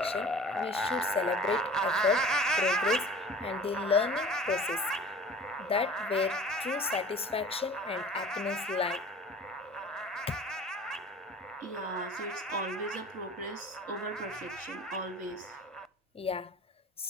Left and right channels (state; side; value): normal; both; correlation 0.42